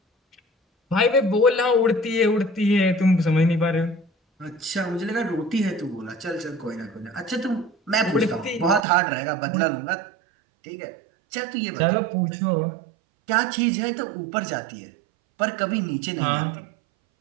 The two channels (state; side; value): drops out; left; at 8.8 s